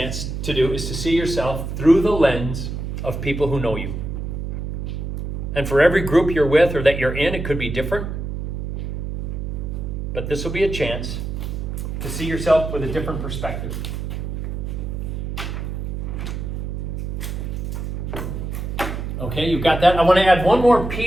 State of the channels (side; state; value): right; noise; hum, 4 dB below the sound